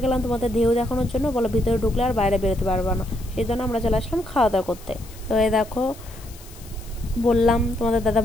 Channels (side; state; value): left; noise; hiss, 21 dB below the sound